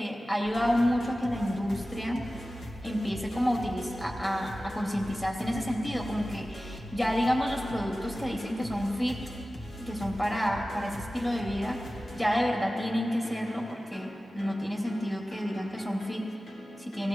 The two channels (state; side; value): normal; both; correlation 0.95